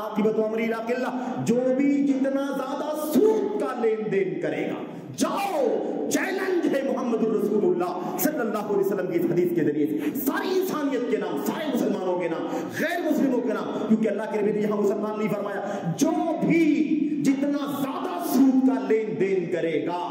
امرہ الی قلہ، جو بھی جتنا زیادہ سود کا لین دین کرے گا، جاؤ چیلنج ہے محمد رسول اللہ صلی اللہ علیہ وسلم کی حدیث کے ذریعے سے، ساری انسانیت کے نام، سارے مسلمانوں کے نام، غیر مسلموں کے نام، کیونکہ اللہ کے نبی نے یہاں مسلمان نہیں فرمایا، جو بھی جتنا زیادہ سود کا لین دین کرے گا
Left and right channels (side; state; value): both; identical; correlation 1.00